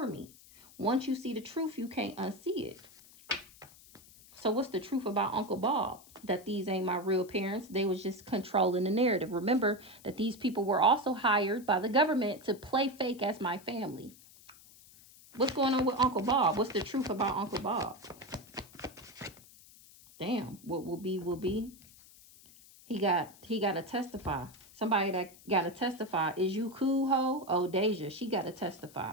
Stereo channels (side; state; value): left; noise; hiss, 23 dB below the sound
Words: me. Once you see the truth, you can't unsee it. So what's the truth about Uncle Bob? That these ain't my real parents. They was just controlling the narrative. Remember that these people were also hired by the government to play fake as my family. What's going on with Uncle Bob? What's the truth about Uncle Bob? Damn, what will be, will be. He got to testify. Somebody that got to testify. Is you cool, ho? Oh, Deja, she got to